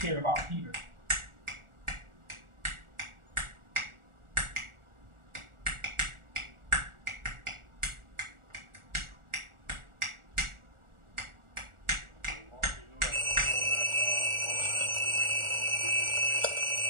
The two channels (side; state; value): left; late; 1.4 ms